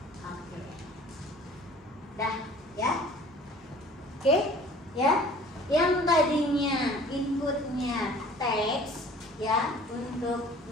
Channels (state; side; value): normal; both; correlation 0.49